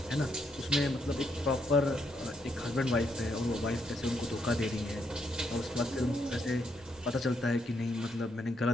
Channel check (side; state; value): both; normal; correlation 0.76